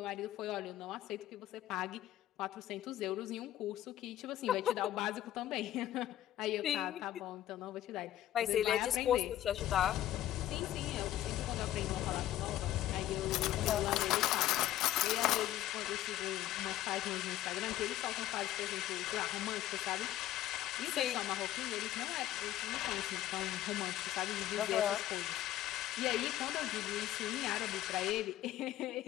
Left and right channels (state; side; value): quieter; right; 13.4 dB